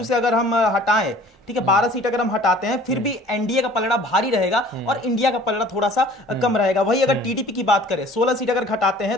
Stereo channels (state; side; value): normal; both; correlation 0.49